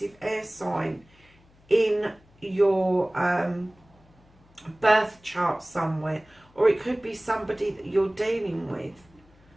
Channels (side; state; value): left; noise; hum, 30 dB below the sound